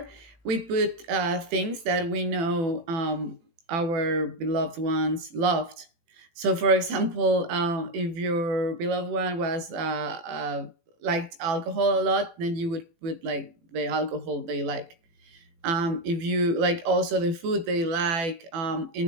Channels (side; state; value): left; late; 18 ms